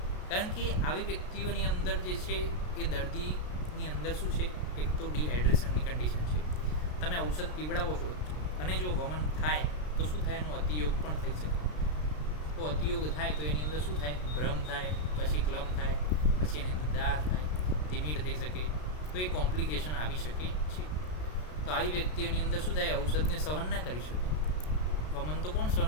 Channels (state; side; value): late; right; 33 ms